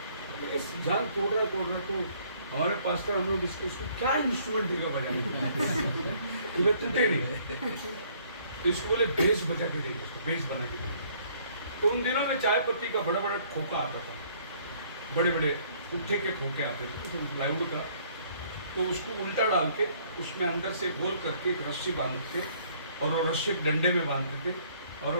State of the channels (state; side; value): inverted; both; correlation -0.61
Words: इस जान तोड़ रहा तो हमारे पास्टर, हम लोग इसको क्या इंस्ट्रूमेंट देगा बजाने को, ये टूटे नहीं। तो इसको बोले बेस बजा के देंगे, इसको बेस बना के देंगे। तो उन दिनों में चाय पत्ती का बड़ा बड़ा खोखा आता था, बड़े बड़े पुट्ठे के खोखे आते थे प्लाईवुड का। तो उसको उल्टा डाल के उसमें अंदर से गोल करके एक रस्सी बांधते थे, और वो रस्सी एक डंडे में बांधते थे, और वो